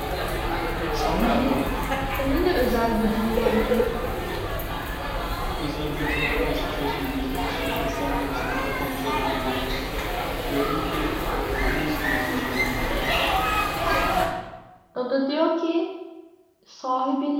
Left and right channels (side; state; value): both; identical; correlation 1.00